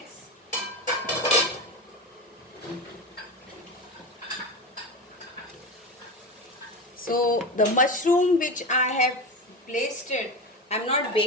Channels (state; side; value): normal; both; correlation 0.22